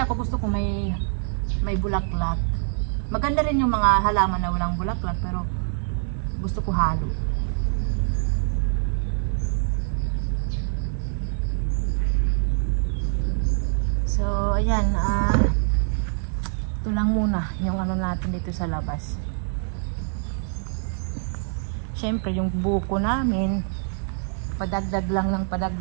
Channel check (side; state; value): left; silent; digital silence